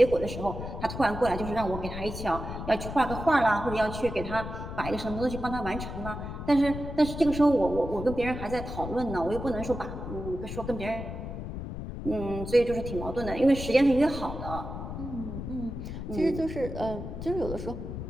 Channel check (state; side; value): noise; left; rumble, 7 dB below the sound